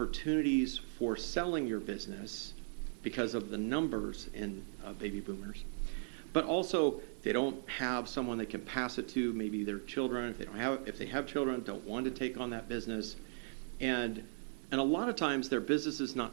for selling your business because of the numbers in baby boomers. But also, they don't have someone they can pass it to, maybe their children. If they have children, don't want to take on that business. And a lot of times, their business is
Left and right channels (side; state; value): left; silent; 53 dB below the other